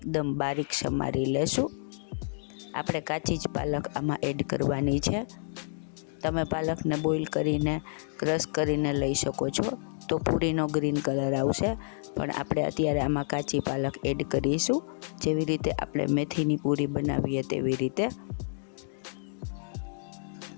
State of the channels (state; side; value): silent; right; digital silence